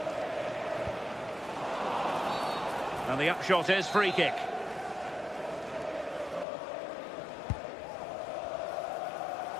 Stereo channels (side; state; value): right; drops out; at 6.5 s